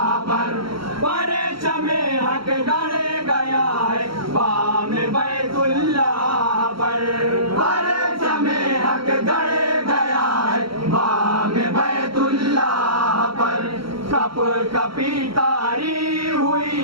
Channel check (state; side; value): late; left; 0.74 ms